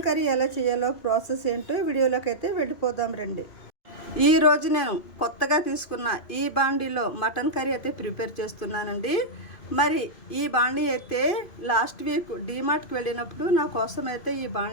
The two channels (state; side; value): late; right; 2.5 ms